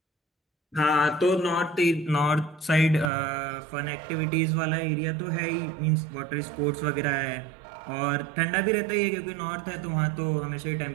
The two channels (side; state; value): left; drops out; at 3.1 s